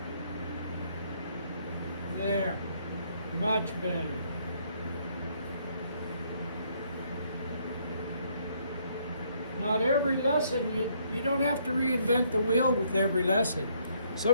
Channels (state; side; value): inverted; both; correlation -0.69